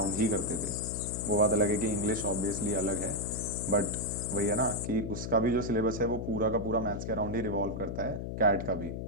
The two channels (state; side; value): noise; left; hum, 5 dB below the sound